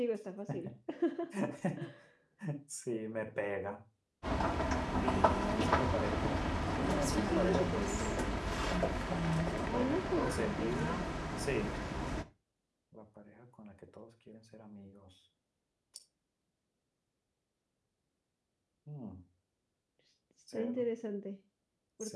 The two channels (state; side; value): identical; both; correlation 1.00